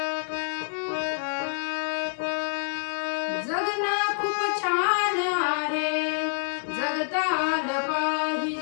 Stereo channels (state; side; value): silent; right; digital silence